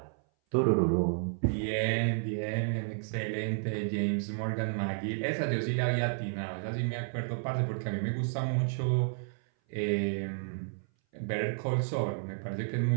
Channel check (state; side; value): silent; left; 57 dB below the other